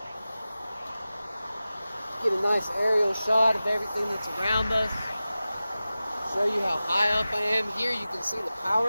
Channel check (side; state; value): both; inverted; correlation -0.95